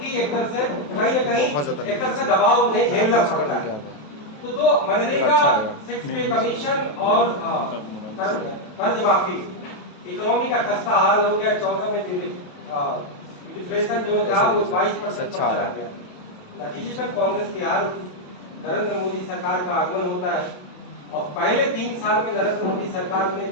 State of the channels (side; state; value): right; late; 28 ms